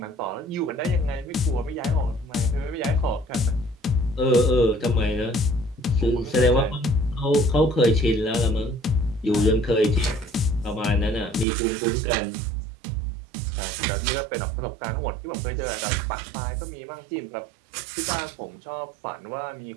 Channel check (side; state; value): left; drops out; at 11.5 s